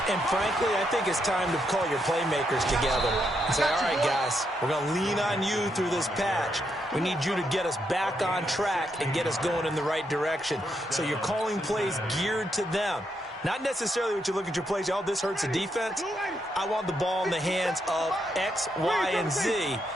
And frankly, I think it's time to call your playmakers together and say, all right, guys, we're going to lean on you through this patch. We need you to get us back on track and get us going in the right direction. So you're calling plays geared to them. Not necessarily what you look at your plays, oh, this hurts the defense. I want the ball in the hands of X, Y, and Z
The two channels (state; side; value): normal; both; correlation 0.79